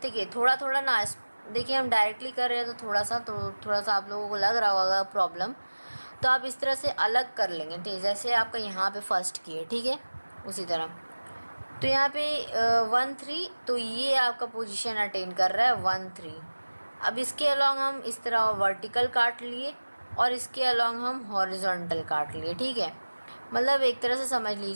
कि थोड़ा थोड़ा ना, देखिए हम डायरेक्टली कर रहे हैं तो थोड़ा सा आप लोगों को लग रहा होगा प्रॉब्लम, तो आप इस तरह से अलग कर लेंगे, ठीक है, जैसे आपका यहाँ पे फर्स्ट किए, ठीक है, उसी तरह। तो यहाँ पे 1 3, तो ये आपका पोजीशन अटेन कर रहा है 1 3। अब इसके अलोंग हम इस तरह वर्टिकल काट लिए और इसके अलोंग हम हॉरिजॉन्टल काट लिए, ठीक है। मतलब एक तरह से समझ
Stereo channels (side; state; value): both; inverted; correlation -1.00